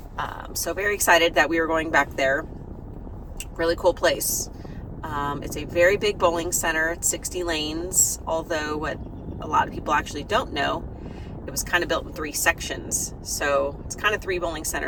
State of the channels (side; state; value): both; identical; correlation 1.00